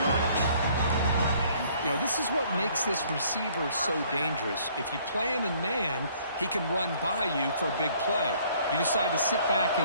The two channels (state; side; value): inverted; both; correlation -0.60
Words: You know, this is what makes this receiver so dangerous. If you play him in man, he can run by you for a big play. You decide to sit back